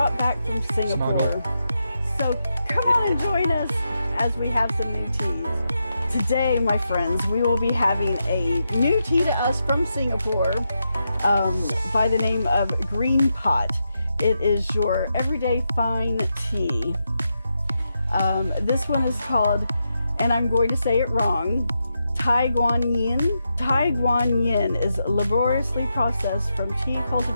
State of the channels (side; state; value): both; inverted; correlation -0.85